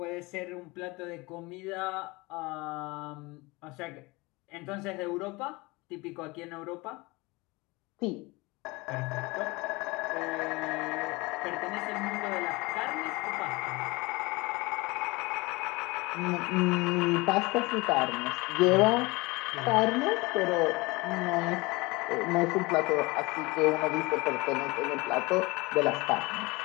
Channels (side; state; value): right; quieter; 23.8 dB